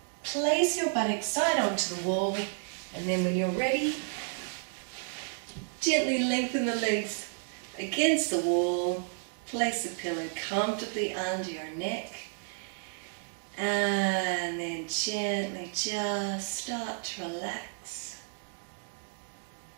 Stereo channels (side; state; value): left; silent; 55 dB below the other